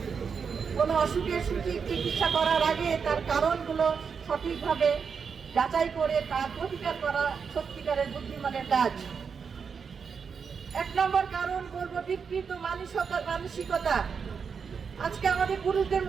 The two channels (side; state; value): left; quieter; 6.1 dB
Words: কোনো অসুখের সঠিক চিকিৎসা করার আগে তার কারণগুলো সঠিকভাবে যাচাই করে তার প্রতিকার করা সত্যিকারের বুদ্ধিমানের কাজ। এক নম্বর কারণ বলবো বিকৃত মানসিকতা। আজকে আমাদের পুরুষদের